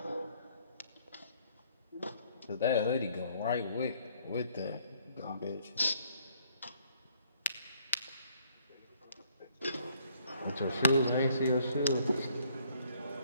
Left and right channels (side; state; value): both; inverted; correlation -0.65